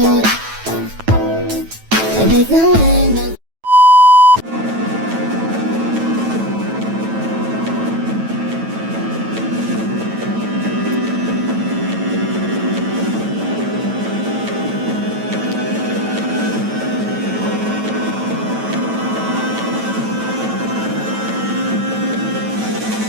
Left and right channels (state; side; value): late; left; 9.1 ms